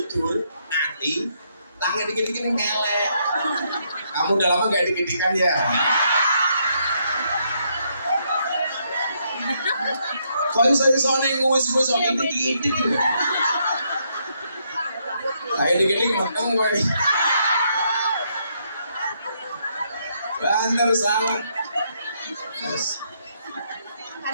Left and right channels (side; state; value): both; inverted; correlation -0.75